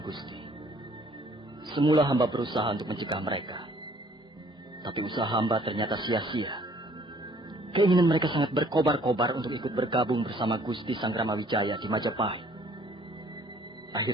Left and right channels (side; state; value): both; normal; correlation 0.58